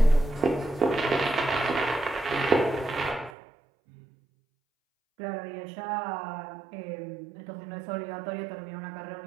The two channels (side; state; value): left; drops out; at 3.4 s